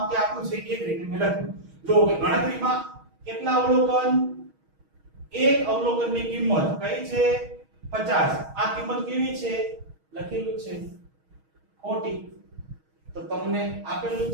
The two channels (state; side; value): late; left; 6.3 ms